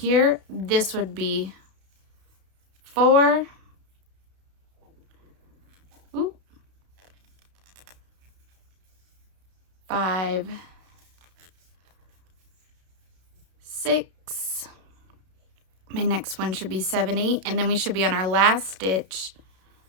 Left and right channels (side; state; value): left; late; 32 ms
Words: This would be 4. 5, 6. My next one should be 7, 8. And then we should be on our last stitch,